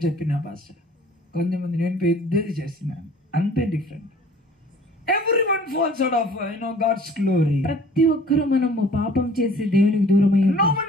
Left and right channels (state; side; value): normal; both; correlation 0.50